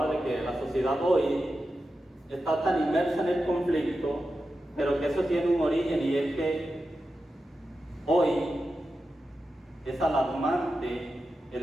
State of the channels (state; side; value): normal; both; correlation 0.90